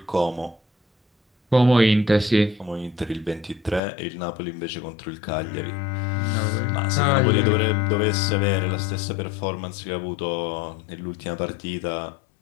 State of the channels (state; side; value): drops out; right; at 3.8 s